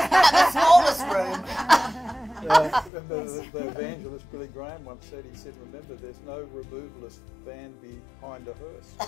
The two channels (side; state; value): right; drops out; at 2.9 s